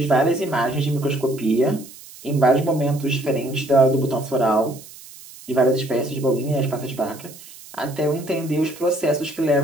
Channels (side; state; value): right; noise; hiss, 19 dB below the sound